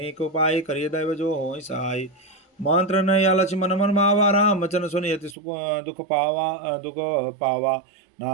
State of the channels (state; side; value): drops out; left; at 5.4 s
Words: उपाय करिय दैव जो हो सहाय मंत्र न या लक्ष्य मन मन मावा राम वचन सुनि अति सुख दुख पावा